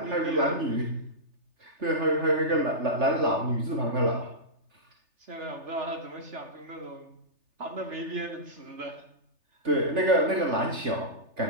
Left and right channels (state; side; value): late; left; 3.3 ms